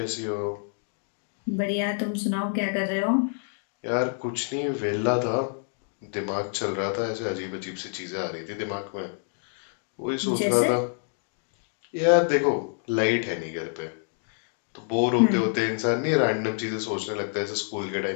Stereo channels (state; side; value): silent; right; 60 dB below the other